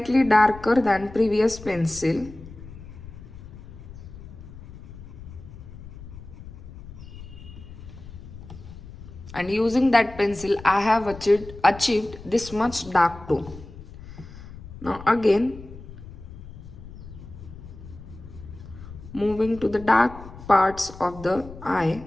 darker than previous pencil. And using that pencil I have achieved this much dark tone. Now again, moving to the dark parts of the eye.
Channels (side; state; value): left; noise; rumble, 15 dB below the sound